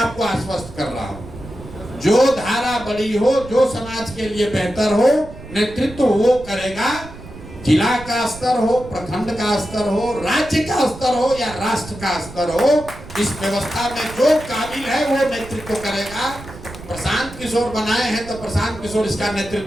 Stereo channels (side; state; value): right; noise; rumble, 15 dB below the sound